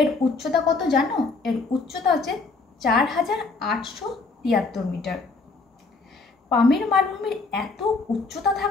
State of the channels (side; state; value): right; quieter; 3.9 dB